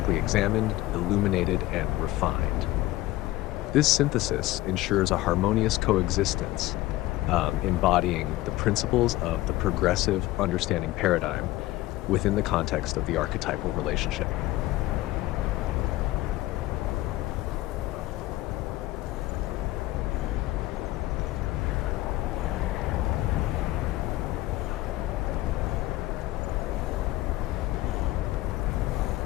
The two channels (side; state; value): right; quieter; 17.4 dB